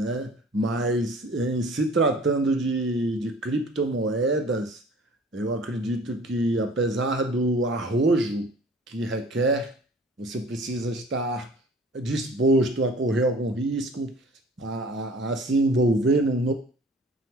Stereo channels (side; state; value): both; normal; correlation 0.48